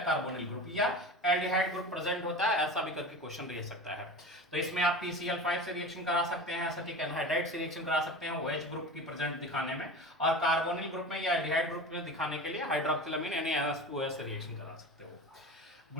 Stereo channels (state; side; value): normal; both; correlation 0.31